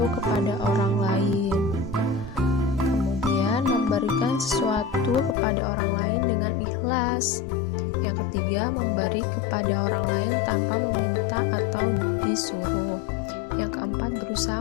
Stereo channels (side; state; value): right; drops out; at 5.4 s